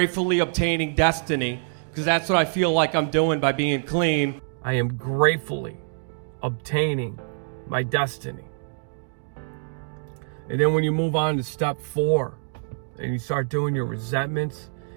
Obtaining Destiny, because that's what I feel like I'm doing by being clean. I am gratefully obtaining my destiny. And then when you move on to step 4 and you start doing your resentments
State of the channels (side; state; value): left; silent; digital silence